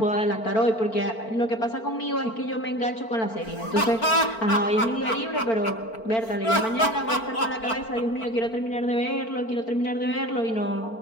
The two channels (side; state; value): right; late; 4.5 ms